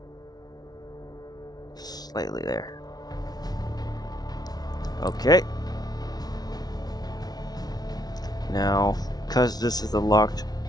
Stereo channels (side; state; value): right; late; 0.19 ms